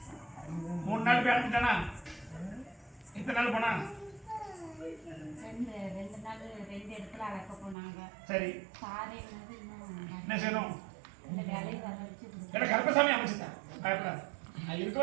3 நாள் போய் அடைஞ்சிட்டானா? எத்தனை நாள் போனா? சரி என்ன செய்யணும்? கருப்பசாமி அமைச்சுட்டேன். பயப்படாது. நான் இருக்க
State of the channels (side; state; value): left; drops out; at 7.8 s